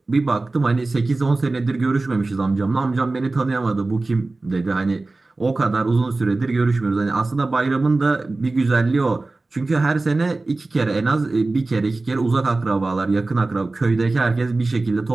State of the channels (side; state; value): left; quieter; 3.2 dB